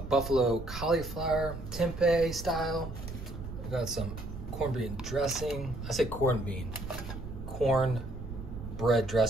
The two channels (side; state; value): right; noise; rumble, 9 dB below the sound